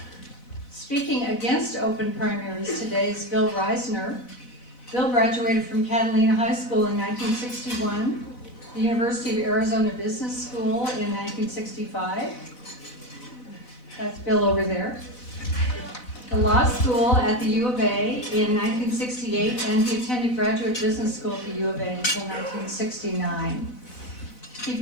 Speaking against open primaries today is Bill Risner. Bill graduated from Catalina High School in 1961, the University of Arizona Business School in 1965. That's Bill over there. The law school at the U of A in 1968, and he attended graduate business school at the U of A until 1969. He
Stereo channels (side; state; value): right; late; 4.0 ms